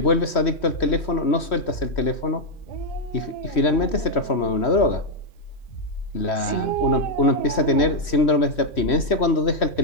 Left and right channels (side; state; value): right; late; 3.1 ms